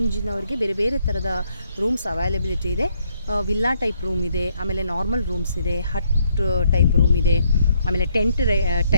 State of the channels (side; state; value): both; inverted; correlation -0.72